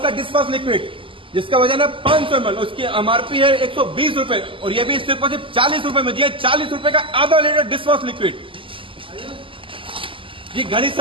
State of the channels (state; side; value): late; left; 0.25 ms